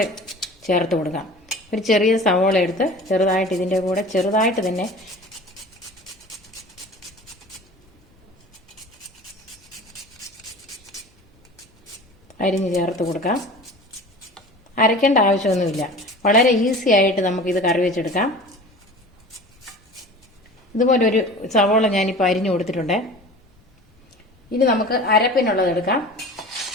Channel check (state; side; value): normal; both; correlation 0.39